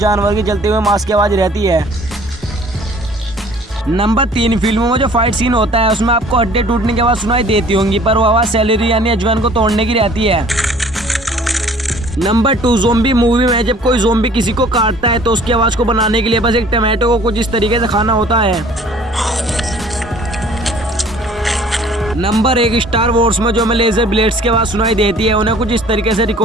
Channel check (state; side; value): normal; both; correlation 0.53